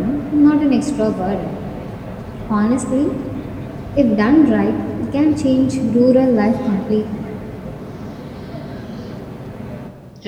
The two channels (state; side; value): identical; both; correlation 1.00